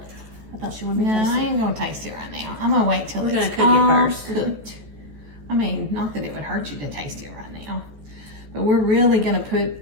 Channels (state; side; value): late; left; 14 ms